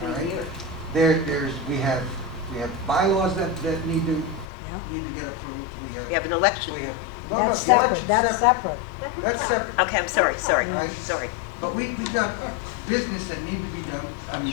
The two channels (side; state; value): right; drops out; at 4.5 s